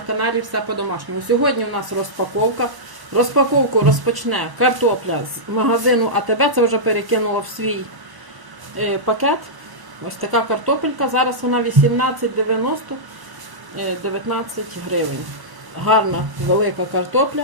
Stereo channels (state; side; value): late; left; 1.1 ms